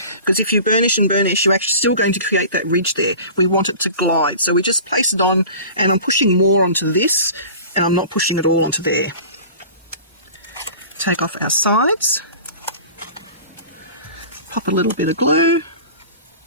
because if you burnish and burnish, you're actually still going to create that ridge there. We want it to glide. So we just place it on, and I'm pushing more onto this, and I'm not pushing it all onto there. Take off our sides. Pop a little bit of glue.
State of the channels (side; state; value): both; inverted; correlation -0.40